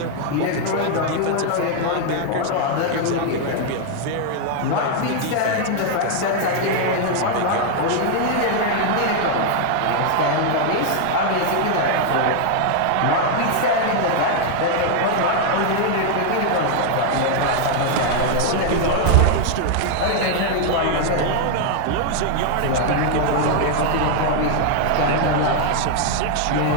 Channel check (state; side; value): different; both; correlation 0.00